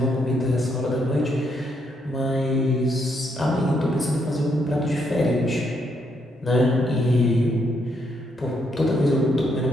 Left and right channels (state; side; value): normal; both; correlation 0.76